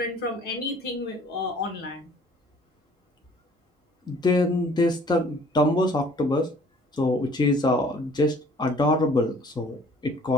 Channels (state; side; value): normal; both; correlation 0.54